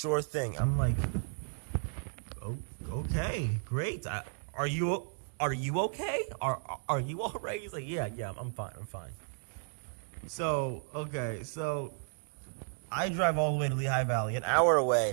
thing. I'm like, okay, great. Are you okay? Are you all right? He's like, yeah, I'm fine. So I drive all the way to Lehigh Valley, an hour away.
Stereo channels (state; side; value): silent; left; digital silence